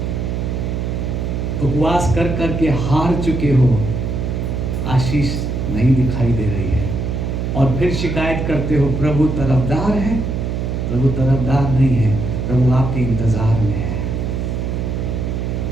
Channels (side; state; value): right; noise; hum, 2 dB below the sound